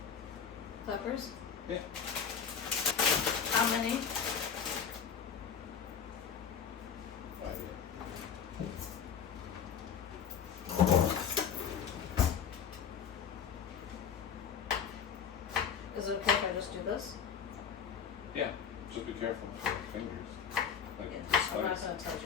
Peppers? Yeah. How many? 5. Is it okay if I just do this? Yeah. Just be careful with your fingers. Like Yeah, I'm not slice. gonna touch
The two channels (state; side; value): quieter; right; 7.5 dB